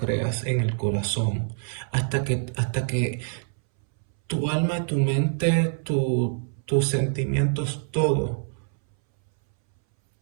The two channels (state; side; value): silent; left; 61 dB below the other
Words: en el corazón, hasta que tu alma, tu mente, tus sentimientos, todo